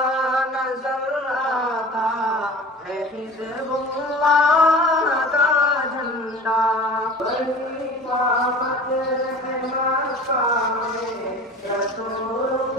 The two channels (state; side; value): normal; both; correlation 0.39